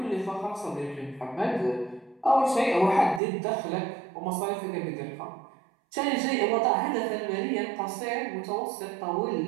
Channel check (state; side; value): drops out; left; at 3.2 s